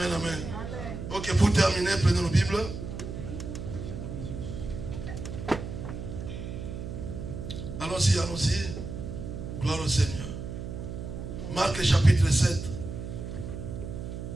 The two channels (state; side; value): noise; right; hum, 7 dB below the sound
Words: amen. Ok, pour terminer, prenons nos Bibles. Allons-y, allons-y. Gloire au Seigneur. Marc chapitre 7.